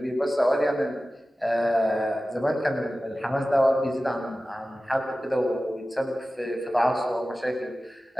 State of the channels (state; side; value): normal; both; correlation 0.95